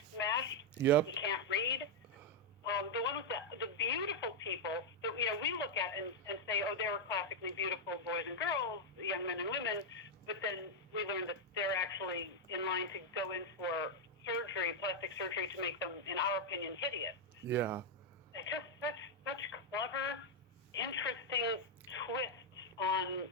smashed. Yep. He can't read. The one with the beautiful people that we look at and say, oh, they were classically beautiful boys and girls, young men and women, but then we learn that they're actually in line to go in for surgery, plastic surgery, to make them, in our opinion, hideous. Yeah. It's just such clever, interesting twists on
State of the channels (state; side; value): normal; both; correlation -0.01